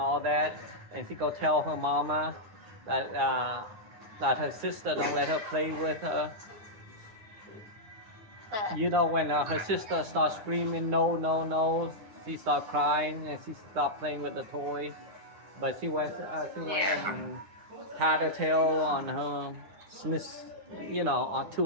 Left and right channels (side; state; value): left; late; 9.7 ms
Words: that, and she go tell her mama that her sister don't let her play with her. When her sister starts screaming no, she start crying and she stop playing with the toy. But she went and tied her tail on her